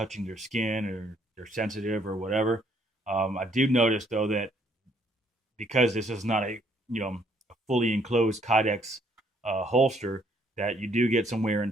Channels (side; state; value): both; normal; correlation 0.66